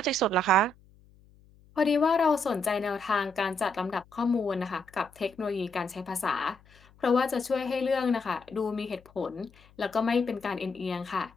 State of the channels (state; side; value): noise; left; hum, 28 dB below the sound